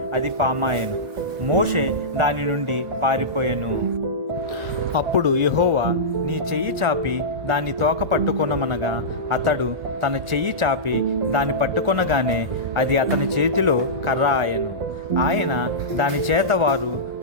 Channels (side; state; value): left; late; 1.4 ms